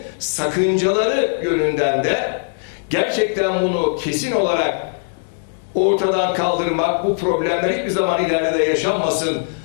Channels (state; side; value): silent; right; digital silence